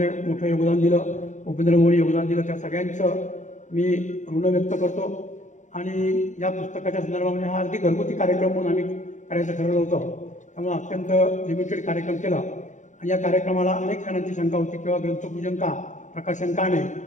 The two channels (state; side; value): late; right; 0.35 ms